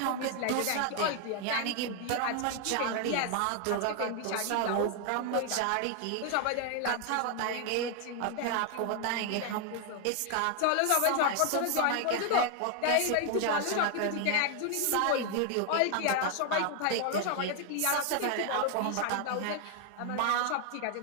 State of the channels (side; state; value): both; different; correlation 0.00